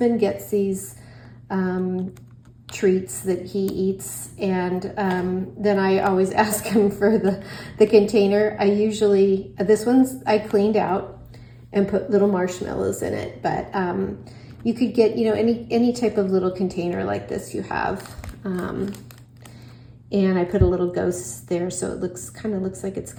gets these treats that he eats, and then I always ask him for the container. This one's I cleaned out and put little marshmallows in it, but you could get, any type of little container like this you have. And I put a little ghost there, so it kind of looks like it's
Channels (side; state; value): both; identical; correlation 1.00